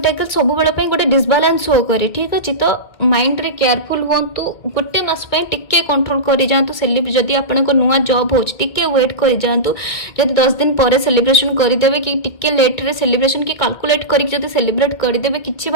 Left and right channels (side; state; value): right; late; 2.3 ms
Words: सब बेले पई गोटे डिसबालांस शो करे ठीक अछि। तो माइंड रे केयरफुल होंतु गोटे मास पई टिके कंट्रोल करि जांतु। सेलिब्रेट जदि आपनको नुआ जॉब होच टिके वेट करि जांतु। जदि 10 दिन परे सेलिब्रेशन करि देबे कि टिके लेट रे सेलिब्रेशन की कैलकुलेट करि जदि सेलिब्रेट करि देबे किछि